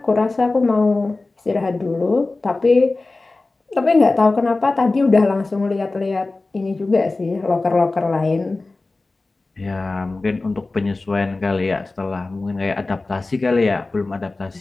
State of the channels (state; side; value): quieter; right; 3.3 dB